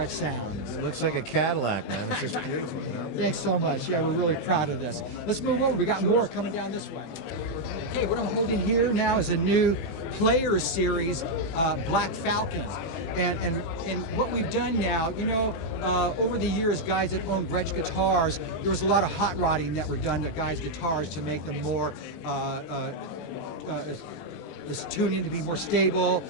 sound. It looks like a Cadillac, man. It's just beautiful, you know? Thanks so much. Yeah, we're really proud of this. Let's move over. We got more coming down this way. Okay, what I'm holding here now is a new Player Series Black Falcon, and what we've done now, you know, over the years, guys that own Gretsch guitars, there was a lot of hot rodding that were done to guys' guitars to make them more this tuning to be more stable,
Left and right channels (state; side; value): late; right; 20 ms